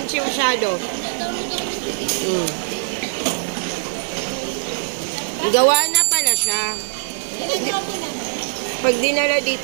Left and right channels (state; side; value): silent; left; digital silence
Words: masyado. Gawa na pala siya. Pag dinala